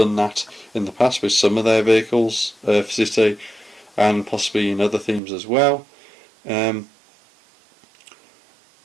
that in the past with some of their vehicles for City, and possibly in other themes as well. And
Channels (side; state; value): left; drops out; at 5.2 s